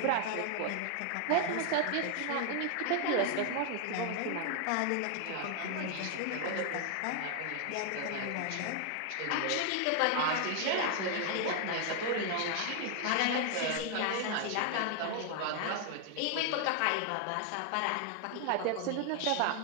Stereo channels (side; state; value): both; different; correlation 0.00